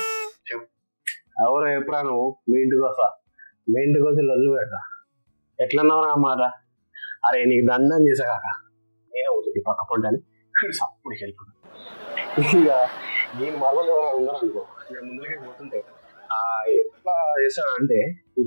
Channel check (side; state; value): both; inverted; correlation -1.00